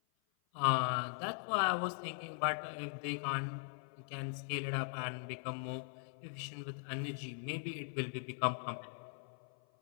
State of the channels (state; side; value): silent; right; 51 dB below the other